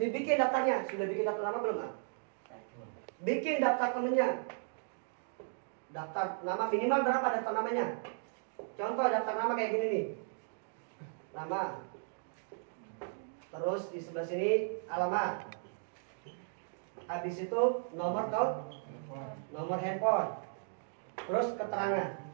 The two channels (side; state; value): left; silent; digital silence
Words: daftarnya. Sudah bikin daftar nama belum? Bikin daftar temennya. Daftar nama minimal berapa daftar namanya? Contoh daftar nama kayak gini nih. Nama. Terus di sebelah sini alamat. Habis itu nomor handphone. Terus keterangan.